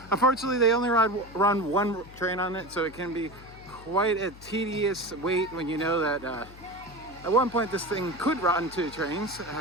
Unfortunately, they only run one train on it, so it can be quite a tedious wait when you know that at one point this thing could run 2 trains,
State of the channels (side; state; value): left; noise; hum, 19 dB below the sound